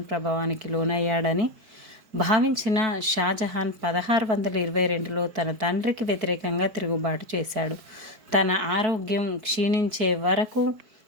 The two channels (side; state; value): left; late; 4.6 ms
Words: ప్రభావానికి లోనయ్యాడని భావించిన షాజహాన్ 1622లో తన తండ్రికి వ్యతిరేకంగా తిరుగుబాటు చేశాడు. తన ఆరోగ్యం క్షీణించే వరకు